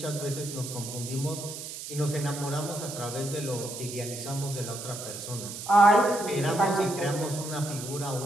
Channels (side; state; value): right; noise; hiss, 9 dB below the sound